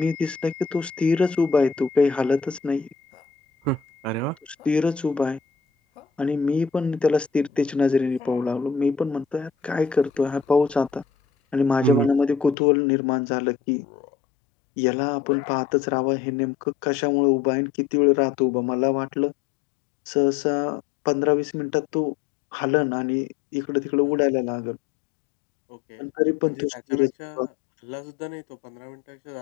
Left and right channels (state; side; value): drops out; right; at 12.6 s